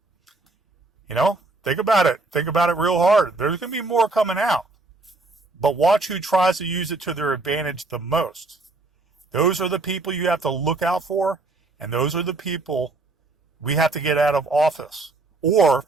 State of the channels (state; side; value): quieter; left; 3.3 dB